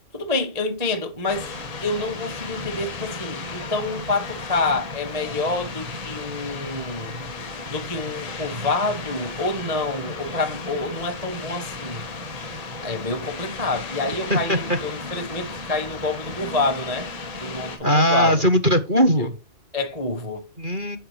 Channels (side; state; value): left; late; 2.4 ms